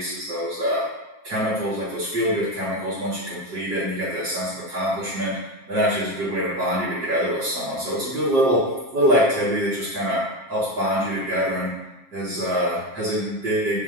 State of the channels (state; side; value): late; left; 7.5 ms